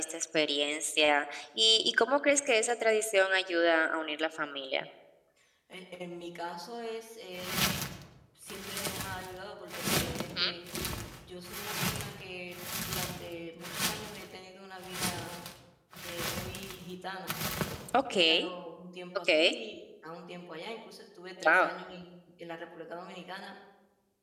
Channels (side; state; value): both; identical; correlation 1.00